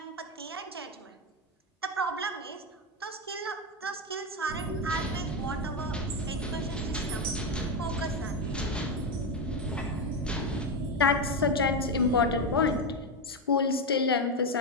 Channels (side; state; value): both; normal; correlation 0.10